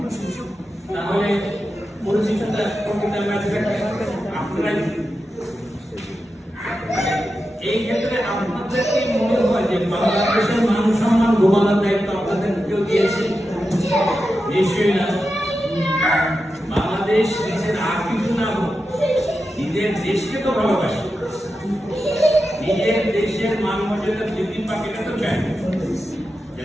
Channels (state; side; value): normal; both; correlation 0.90